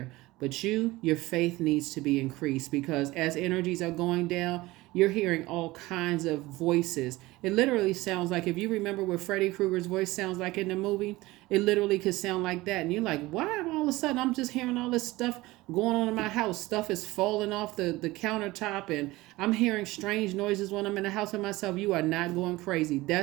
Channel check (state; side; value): quieter; left; 19.6 dB